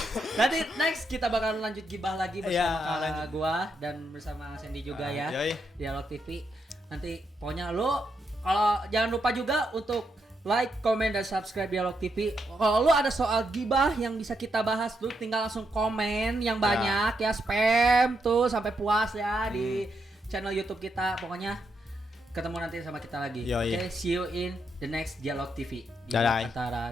Nanti next kita bakal lanjut gibah lagi bersama gua dan bersama Sandy juga ya. Dialog TV. Nanti pokoknya lo kalau jangan lupa juga untuk like, komen, dan subscribe Dialog TV. Kalau lu ada soal gibah yang bisa kita bahas, lu tinggal langsung komen yang banyak ya, spam tuh sampai puas ya di channel YouTube kita. Pokoknya ketemu nanti sama kita lagi. Oke, see you in the next Dialog TV. Di antara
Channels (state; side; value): normal; both; correlation 0.81